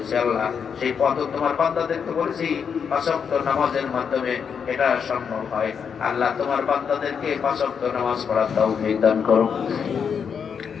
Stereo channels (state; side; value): quieter; right; 6.8 dB